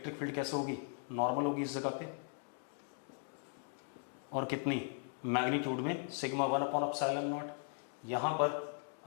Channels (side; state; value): right; silent; 52 dB below the other